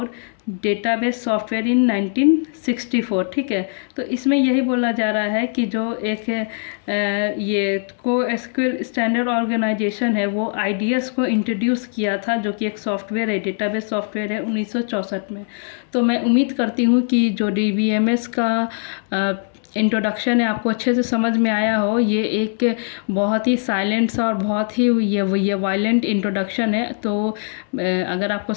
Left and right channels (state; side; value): silent; right; 61 dB below the other